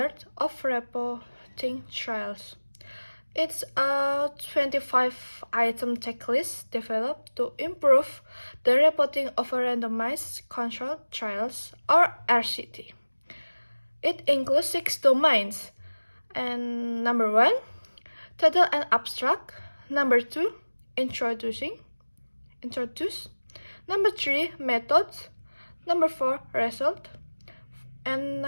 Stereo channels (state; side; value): inverted; both; correlation -1.00